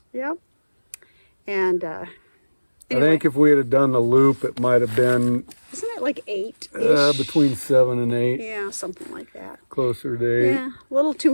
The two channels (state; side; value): inverted; both; correlation -1.00